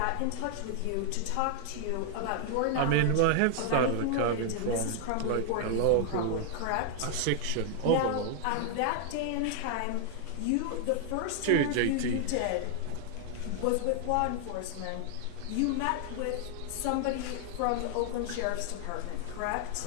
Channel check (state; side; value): different; both; correlation 0.00